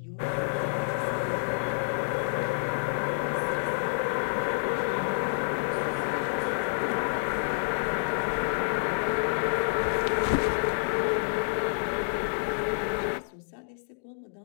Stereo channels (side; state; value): right; silent; digital silence